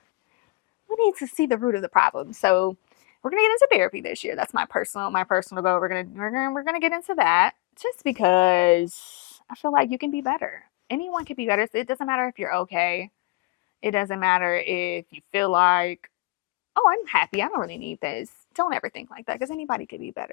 we need to see the root of the problem. So we're gonna get into therapy this year. That's my personal goal. We're gonna get into that, just because I feel like you can be better. Anyone can be better. It doesn't matter if you're okay. It doesn't matter if you feel like, oh, I'm happy, I don't really need this. Don't ever think like that, because anybody could be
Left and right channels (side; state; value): right; quieter; 24.2 dB